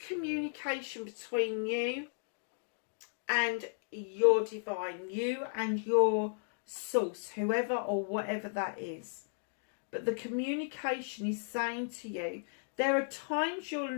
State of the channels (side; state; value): right; silent; digital silence